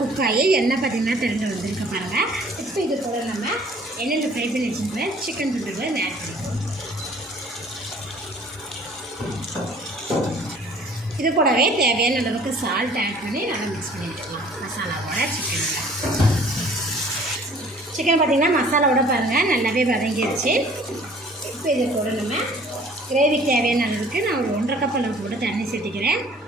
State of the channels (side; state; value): both; normal; correlation 0.53